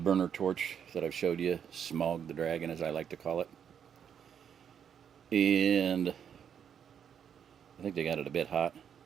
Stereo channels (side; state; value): left; quieter; 8.1 dB